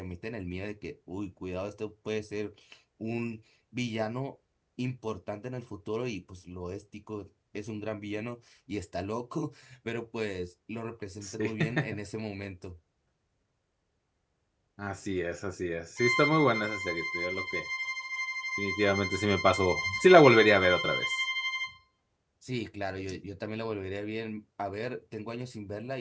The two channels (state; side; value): identical; both; correlation 1.00